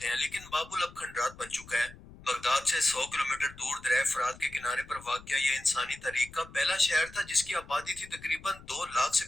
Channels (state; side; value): noise; left; rumble, 19 dB below the sound